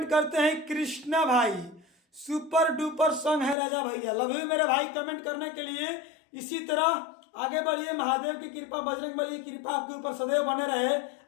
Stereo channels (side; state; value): right; drops out; at 3.6 s